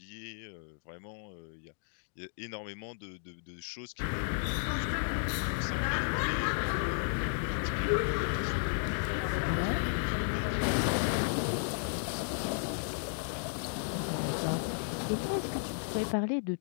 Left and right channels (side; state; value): right; silent; digital silence